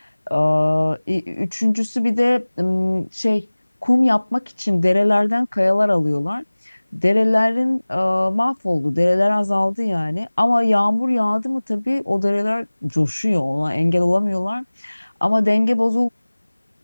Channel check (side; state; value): both; inverted; correlation -1.00